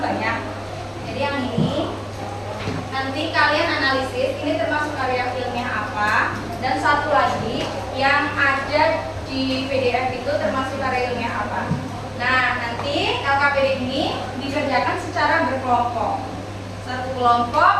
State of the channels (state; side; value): identical; both; correlation 1.00